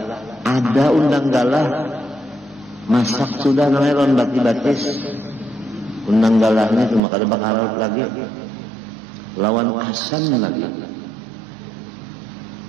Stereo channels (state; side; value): drops out; left; at 7.0 s